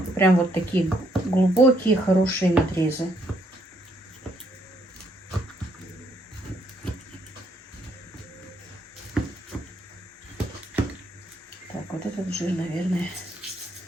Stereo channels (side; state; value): both; normal; correlation 0.71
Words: прям вот такие глубокие, хорошие надрезы. Так, вот этот жир, наверное,